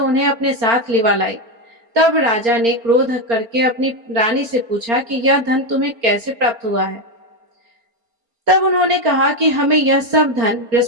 उन्हें अपने साथ लिवा लाई। तब राजा ने क्रोध करके अपनी रानी से पूछा कि यह धन तुम्हें कैसे प्राप्त हुआ है। तब उन्होंने कहा कि हमें यह सब धन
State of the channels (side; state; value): left; late; 4.3 ms